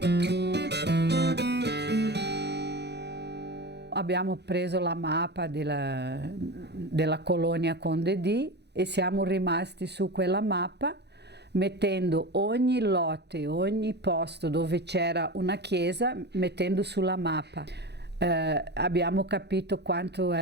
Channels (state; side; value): late; left; 0.49 ms